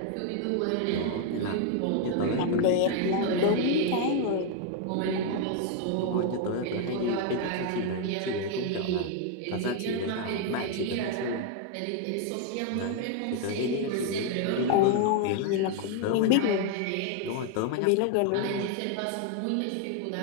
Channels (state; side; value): different; both; correlation 0.00